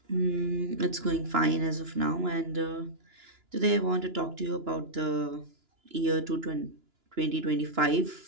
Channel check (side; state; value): left; late; 2.9 ms